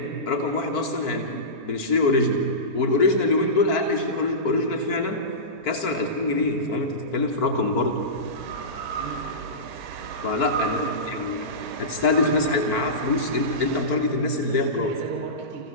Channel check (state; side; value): late; right; 4.5 ms